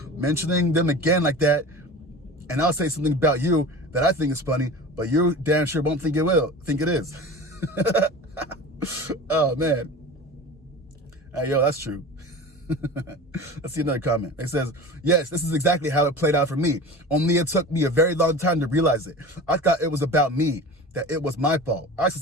Mentioning them again like that, and I'll say something about you that I think is funny, but you damn sure won't think it is. Oh, man. Hey, yo, that's true. Let's see another comment. It says, yes, this is exactly how it played out for me. Only it took me a very long time to realize it. I thought it was about me, that it was my fault. I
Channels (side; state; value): both; normal; correlation 0.34